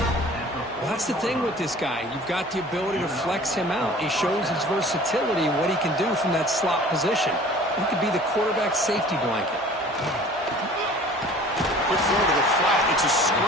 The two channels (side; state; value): both; normal; correlation 0.47